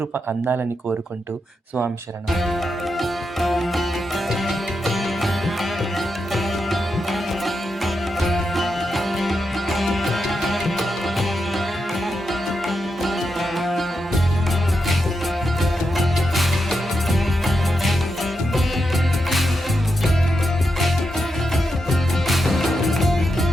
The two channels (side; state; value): both; normal; correlation 0.86